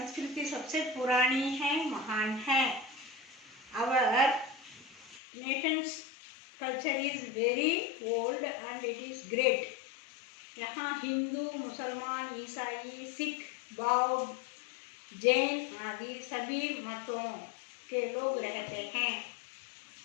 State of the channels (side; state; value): right; drops out; at 5.2 s